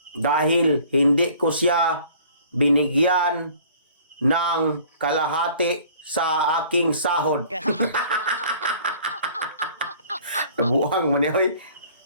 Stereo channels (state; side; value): inverted; both; correlation -0.52